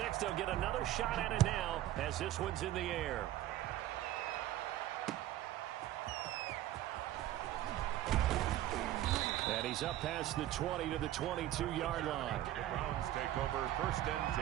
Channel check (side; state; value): left; quieter; 13.7 dB